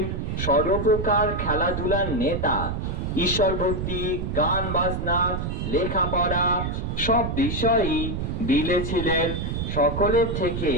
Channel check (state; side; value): noise; right; rumble, 3 dB below the sound